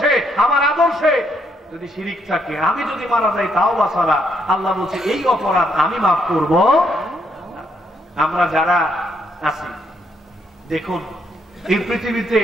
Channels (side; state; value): both; normal; correlation 0.74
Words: আমার আদর্শে যদি শিরিক থাকে, আমি যদি মারা যাই তাওবা ছাড়া, আল্লাহ বলছে এই অপরাধ আমি মাফ করব। আমরা যারা আছি দেখুন, এই পৃথিবীতে